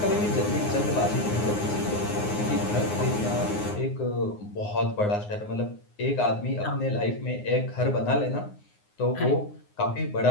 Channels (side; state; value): right; late; 9.6 ms